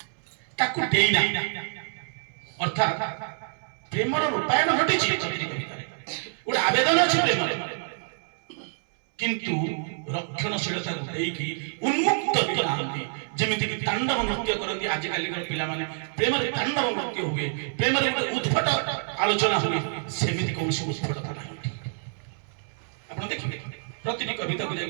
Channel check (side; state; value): left; silent; 60 dB below the other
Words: ताकू देई ना अर्थात प्रेमर रूपायन घटिछि कविता गोटे आवेदन अछि प्रेमर किंतु रक्षणशीलता देकी उन्मुक्त करती जेमिति कि तांडव नृत्य करती आज काली पिला माने प्रेम रे तांडव नृत्य हुए प्रेम रे उद्भट आलोचना हुए सेमिति कोनसी उद्भटता नाही आपण देखिबे प्रतिटी कविता को जाय